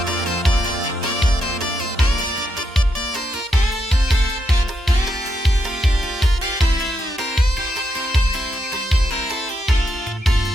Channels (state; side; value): normal; both; correlation 0.81